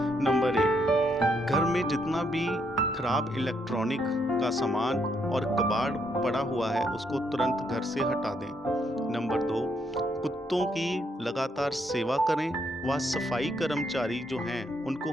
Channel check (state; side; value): normal; both; correlation 0.74